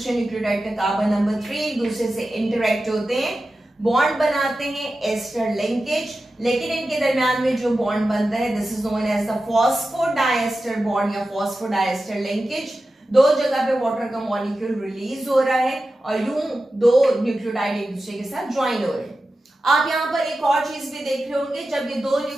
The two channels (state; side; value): normal; both; correlation 0.93